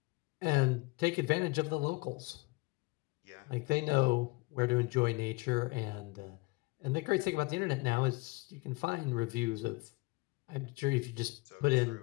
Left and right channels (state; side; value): quieter; right; 25.3 dB